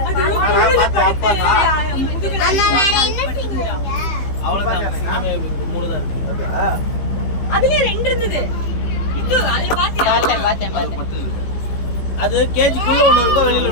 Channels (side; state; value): right; late; 15 ms